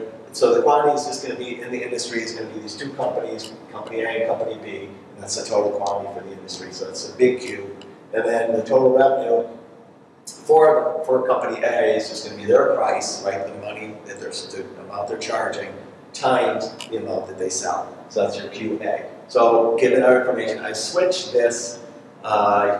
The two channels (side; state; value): both; identical; correlation 1.00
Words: so the quantity is just going to be, in the industry, is going to be these two companies, company A and company B, and that's the total quantity for the industry, so it's a big Q. And then the total revenue for company A is just going to be their price, right, the money that the amount they're charging, times the amount that they sell. So that's your QA. So given our information, I switched this,